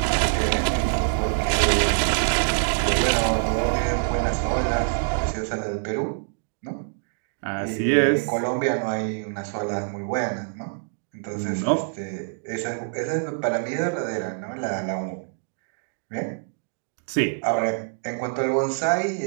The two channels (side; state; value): left; silent; digital silence